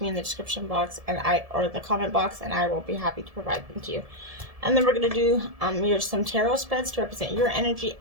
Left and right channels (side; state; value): left; late; 1.7 ms